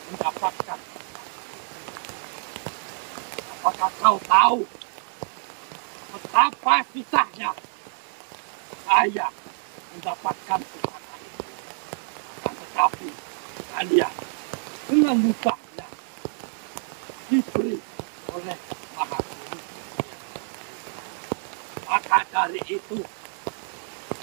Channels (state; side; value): silent; left; 60 dB below the other